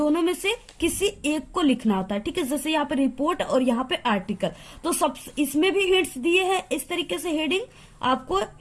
में से किसी एक को लिखना होता है, ठीक है। जैसे यहाँ पे रिपोर्ट और यहाँ पे आर्टिकल, तो सब इसमें भी हिंट्स दिए हैं इस तरीके से, हेडिंग आपको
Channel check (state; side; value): identical; both; correlation 1.00